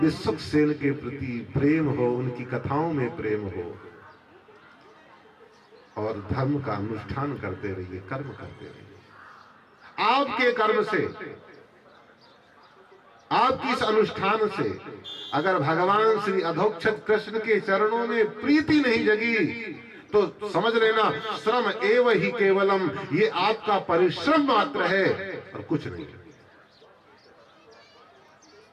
के प्रति प्रेम हो, उनकी कथाओं में प्रेम हो और धर्म का अनुष्ठान करते रहिए, कर्म करते रहिए। आपके कर्म से, आपकी इस अनुष्ठान से अगर भगवान श्री अधोक्षज कृष्ण के चरणों में प्रीति नहीं जगी तो समझ लेना श्रम एव ही केवलम, ये आपका परिश्रम मात्र है और कुछ नहीं।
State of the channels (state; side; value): identical; both; correlation 1.00